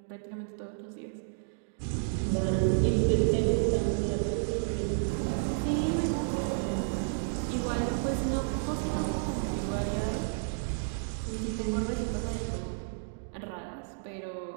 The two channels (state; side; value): silent; left; digital silence